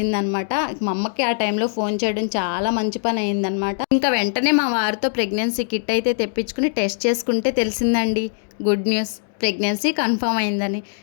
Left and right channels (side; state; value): right; silent; digital silence